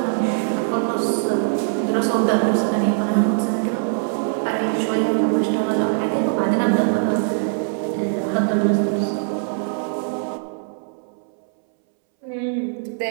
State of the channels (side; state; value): left; silent; 64 dB below the other